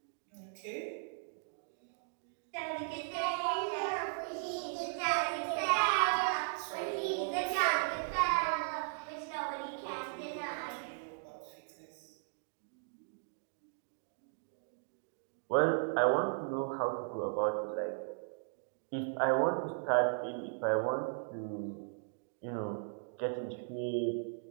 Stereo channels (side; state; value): left; silent; digital silence